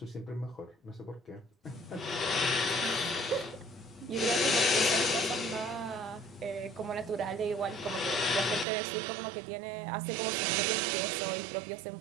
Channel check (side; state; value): left; drops out; at 8.7 s